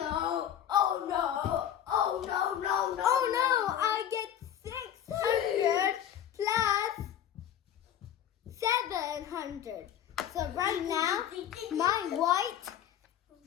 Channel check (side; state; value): right; quieter; 10.2 dB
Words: Oh no! Oh no! No! No! Oh no! I get 600 plus 700. So right now, my white